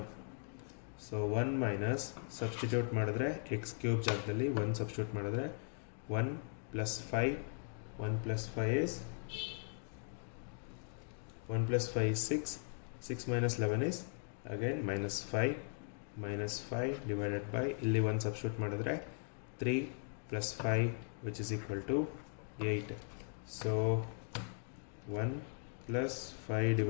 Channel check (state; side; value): silent; right; 52 dB below the other